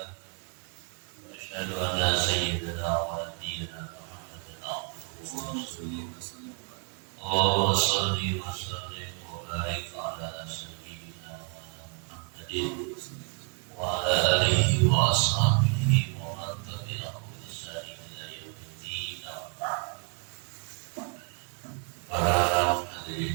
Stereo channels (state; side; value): quieter; left; 38.2 dB